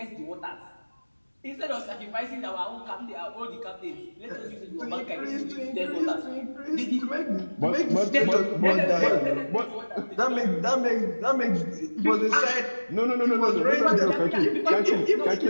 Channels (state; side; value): inverted; both; correlation -1.00